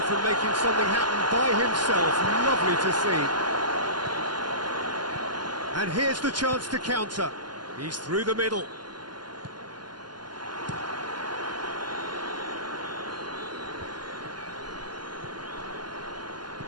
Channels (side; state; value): left; late; 0.71 ms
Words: from making something happen by himself. Lovely to see. And here's the chance to counter. He's through the middle.